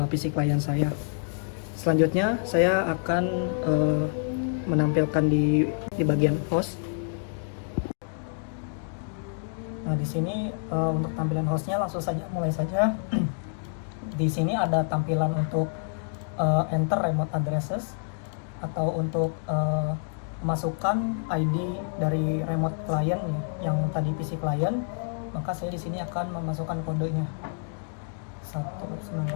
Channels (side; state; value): right; silent; digital silence